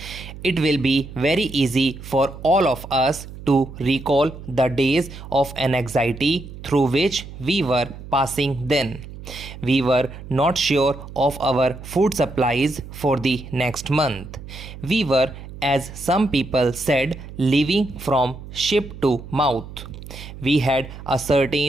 It will be very easy for all of us to recall the days of anxiety through which we were passing then. We were not sure of our food supplies for the next month. We were, as some people said, living from ship to mouth. We had a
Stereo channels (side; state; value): right; noise; hum, 14 dB below the sound